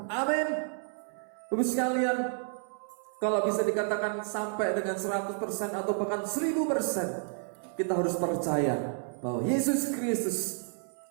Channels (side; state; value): left; silent; 57 dB below the other